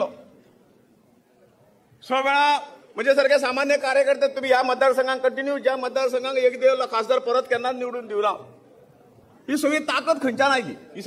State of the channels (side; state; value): both; identical; correlation 1.00